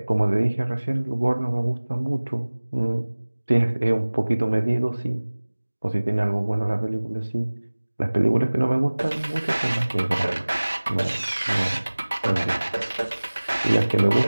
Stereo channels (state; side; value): inverted; both; correlation -1.00